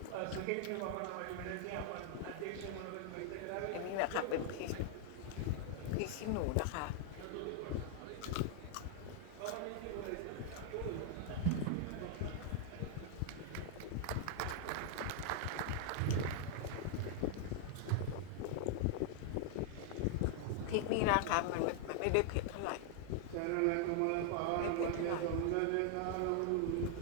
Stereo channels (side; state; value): both; different; correlation 0.00